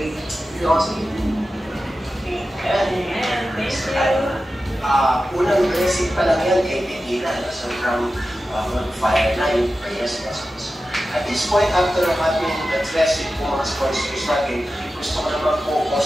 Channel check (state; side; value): normal; both; correlation 0.93